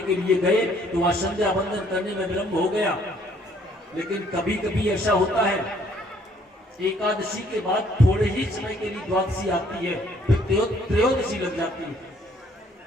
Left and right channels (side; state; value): both; normal; correlation 0.63